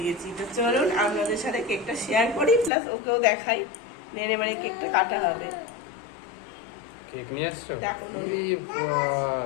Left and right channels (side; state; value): right; drops out; at 2.7 s